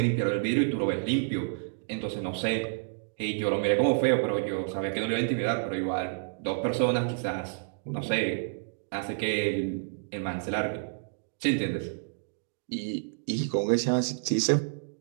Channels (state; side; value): silent; left; digital silence